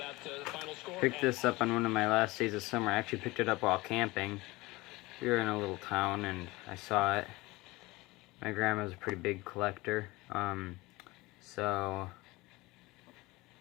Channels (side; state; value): right; quieter; 21.3 dB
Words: final score. Picked this up on one of my last days of summer. I actually picked it up while camping. We were in a little town and I saw it. My grandma's a pretty big collector, so,